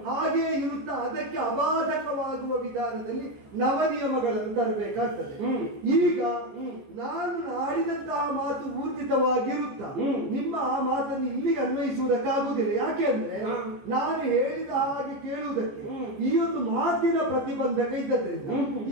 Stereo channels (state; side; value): late; left; 14 ms